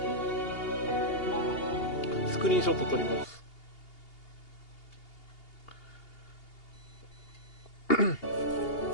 スクリーンショット撮ります。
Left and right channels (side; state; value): right; late; 2.8 ms